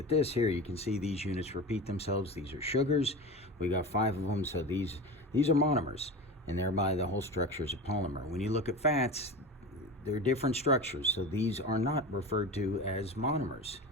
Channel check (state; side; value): normal; both; correlation 0.28